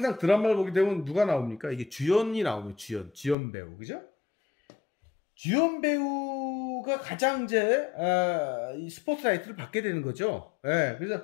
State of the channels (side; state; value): right; drops out; at 3.4 s